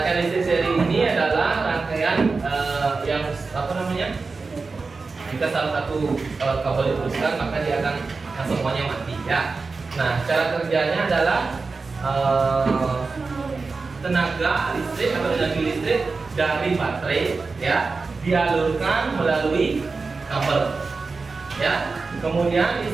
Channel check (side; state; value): left; quieter; 4.2 dB